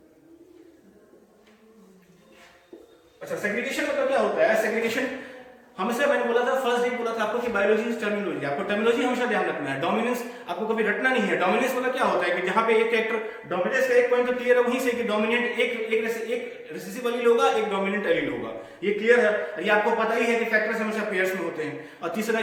अच्छा, सेग्रीगेशन मतलब क्या होता है? सेग्रीगेशन हमेशा मैंने बोला था, फर्स्ट डे बोला था आपको कि बायोलॉजी इज टर्मिनोलॉजी। आपको टर्मिनोलॉजी हमेशा ध्यान रखना है। डोमिनेंस आपको कभी रटना नहीं है। डोमिनेंस मतलब क्या होता है कि जहां पे एक कैरेक्टर डोमिनेंस का एक पॉइंट तो क्लियर है, वहीं से कि डोमिनेंट एक रिसेसिव एलील होगा, एक डोमिनेंट एलील होगा, ये क्लियर है। ये आपको पता ही है कि फैक्टर्स हमेशा पेयर्स में होते हैं, और तीसरा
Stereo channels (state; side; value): identical; both; correlation 1.00